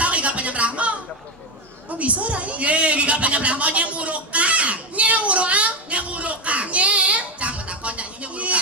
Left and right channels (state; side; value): normal; both; correlation 0.11